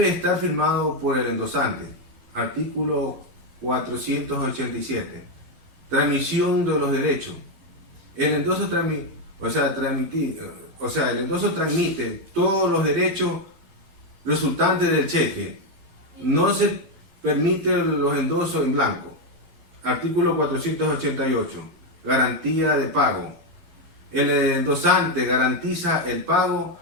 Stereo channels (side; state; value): left; late; 12 ms